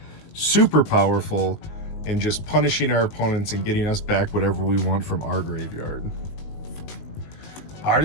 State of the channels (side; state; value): right; late; 19 ms